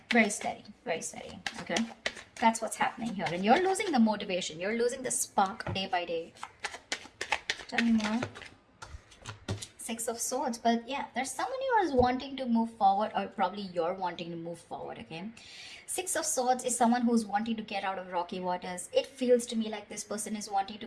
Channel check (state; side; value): identical; both; correlation 1.00